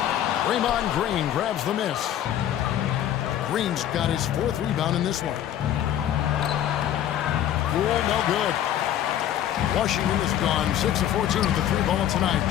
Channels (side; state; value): right; quieter; 11.1 dB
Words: Draymond Green grabs the miss. Green's got his 4th rebound in this one. Poole, no good. Washington is gone 6 of 14 with the 3-ball tonight,